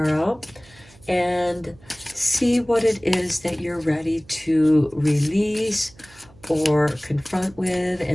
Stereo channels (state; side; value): noise; right; hum, 26 dB below the sound